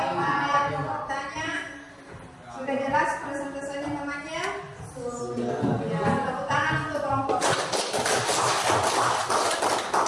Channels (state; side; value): identical; both; correlation 1.00